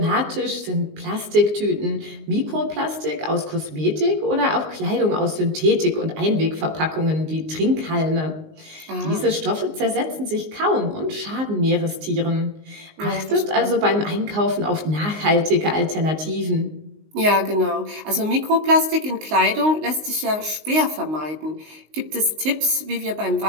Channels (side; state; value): left; late; 19 ms